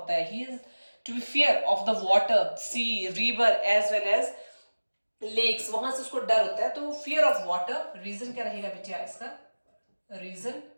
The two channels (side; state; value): both; inverted; correlation -1.00